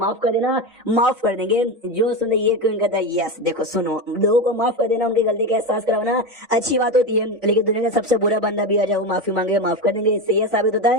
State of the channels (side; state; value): both; normal; correlation 0.18